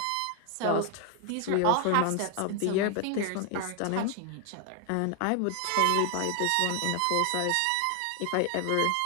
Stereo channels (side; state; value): both; different; correlation 0.00